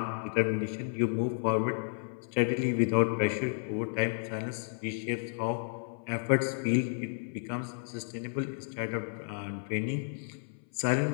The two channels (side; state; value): right; silent; 56 dB below the other